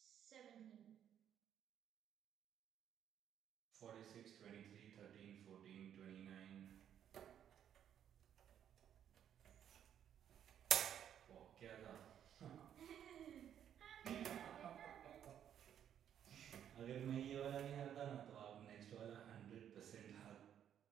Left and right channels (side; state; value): left; quieter; 9.6 dB